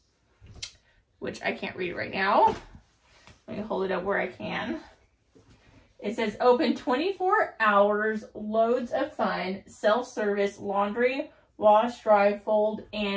which I can't read right now. Let me hold it up where I can. It says open 24 hours, loads of fun, self-service, laundry, wash, dry, fold,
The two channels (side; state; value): both; identical; correlation 1.00